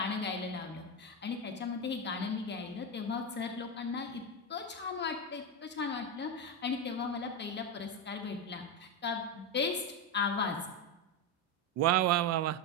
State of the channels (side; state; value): both; normal; correlation 0.11